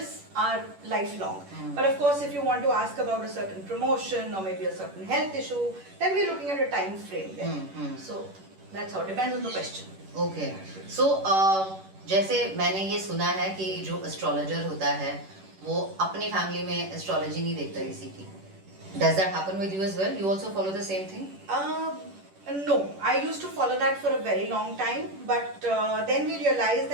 are lifelong. But of course if you want to ask about a certain promotion or maybe a certain health issue, then we're looking at a time frame there. So that's how, depends on the question. Okay. So जैसे मैंने ये सुना है कि जो astrologer होता है वो अपनी फैमिली में एस्ट्रोलॉजी नहीं देखता किसी की. Does that happen with you as well? You also follow the same thing? No, I used to follow that for a very long time, but then we realized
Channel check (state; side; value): late; left; 10 ms